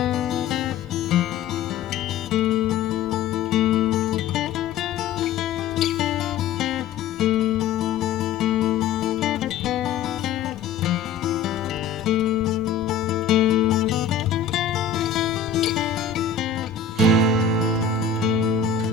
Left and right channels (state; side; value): quieter; right; 7.0 dB